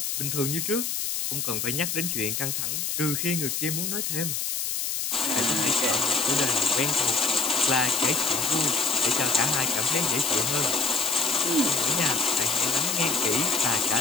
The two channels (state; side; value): noise; left; hiss, 1 dB below the sound